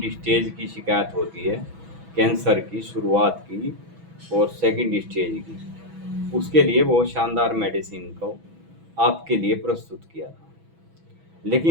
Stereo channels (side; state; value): left; late; 6.1 ms